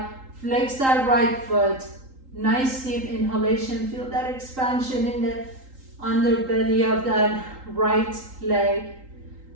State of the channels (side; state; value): left; late; 3.8 ms